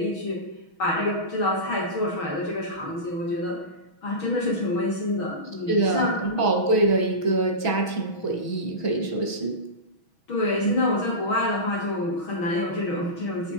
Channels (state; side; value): late; right; 6.2 ms